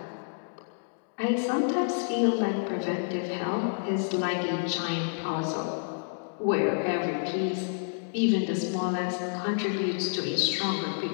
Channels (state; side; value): silent; right; digital silence